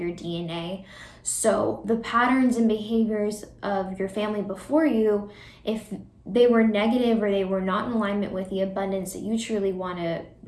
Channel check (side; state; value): both; identical; correlation 1.00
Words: DNA. So the patterns and behaviors of your family before you, if they were negative or they were not in alignment with the abundance that you truly want to